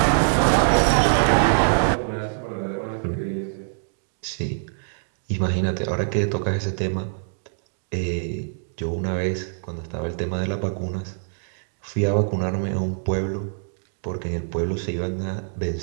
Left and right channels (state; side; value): silent; left; digital silence